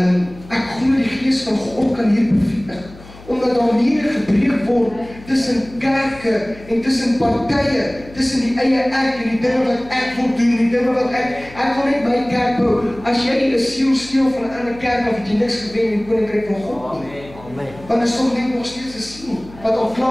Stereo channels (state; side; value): noise; left; hum, 20 dB below the sound